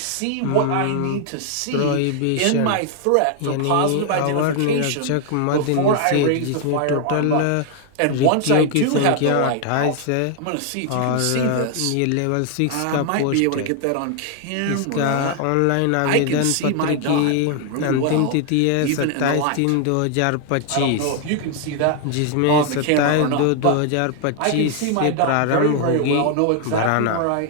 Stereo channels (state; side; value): different; both; correlation 0.00